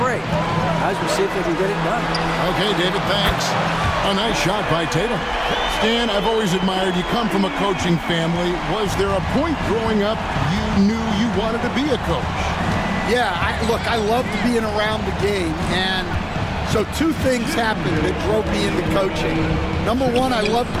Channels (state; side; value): identical; both; correlation 1.00